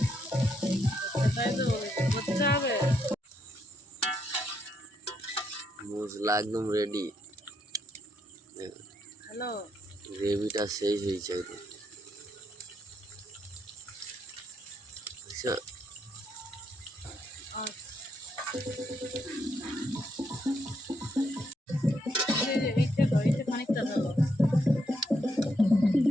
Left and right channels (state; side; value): normal; both; correlation 0.77